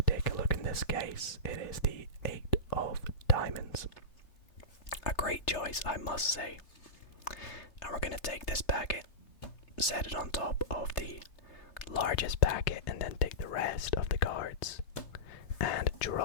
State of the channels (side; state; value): right; late; 3.3 ms